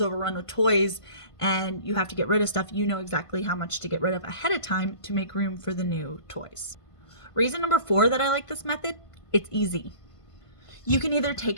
overrun with toys and you have to get rid of stuff. You know exactly how much to get rid of ahead of time to make room for the new toys. Reason number four that I like this method, it's easy. You can either take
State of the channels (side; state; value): right; late; 1.5 ms